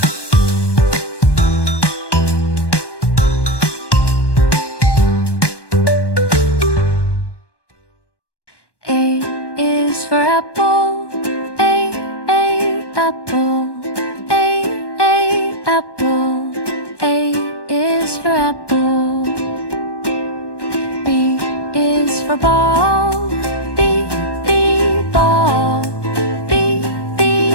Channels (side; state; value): right; late; 1.2 ms